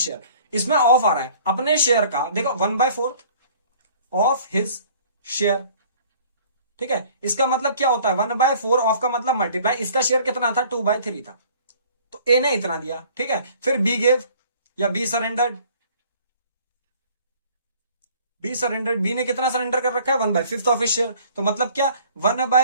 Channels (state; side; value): inverted; both; correlation -0.53